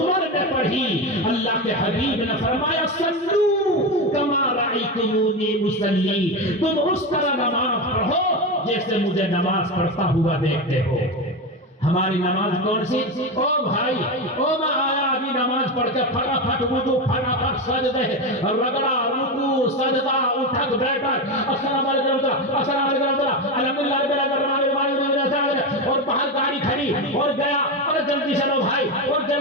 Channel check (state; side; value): normal; both; correlation 0.16